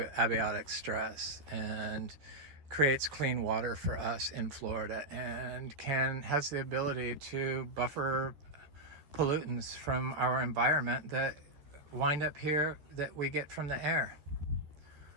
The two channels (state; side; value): late; left; 14 ms